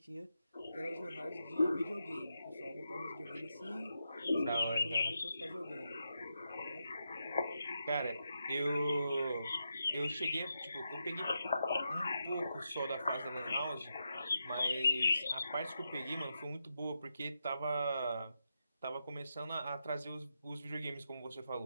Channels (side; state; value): both; inverted; correlation -0.86